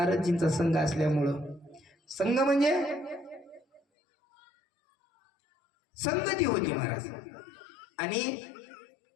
संघ असल्यामुळं, संघ म्हणजे संगती होती महाराज. आणि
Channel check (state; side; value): drops out; right; at 3.8 s